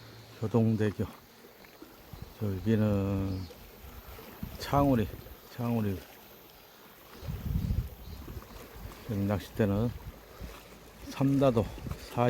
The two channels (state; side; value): identical; both; correlation 1.00